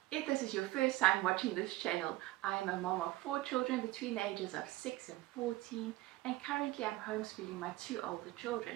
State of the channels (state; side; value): quieter; left; 18.0 dB